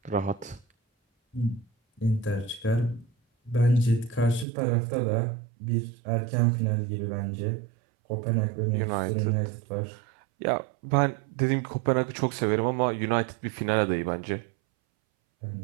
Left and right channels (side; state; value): left; drops out; at 4.5 s